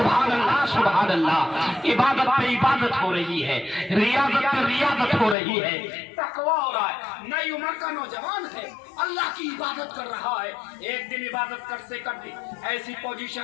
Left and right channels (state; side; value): drops out; right; at 5.4 s